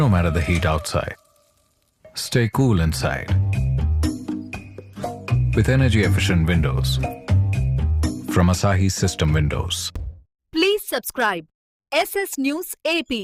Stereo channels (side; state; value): both; identical; correlation 1.00